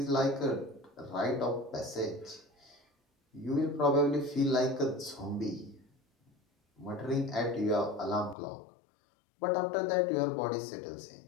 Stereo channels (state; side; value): drops out; right; at 8.3 s